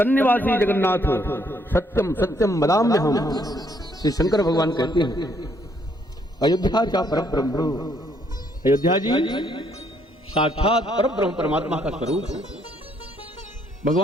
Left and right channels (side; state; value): both; normal; correlation 0.69